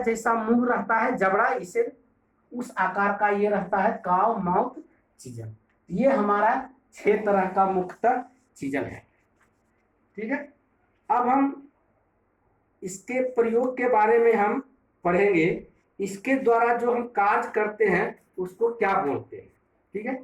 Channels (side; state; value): both; identical; correlation 1.00